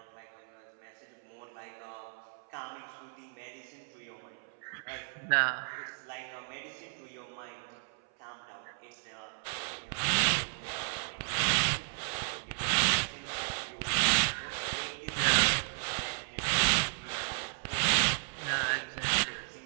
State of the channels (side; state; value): left; silent; 55 dB below the other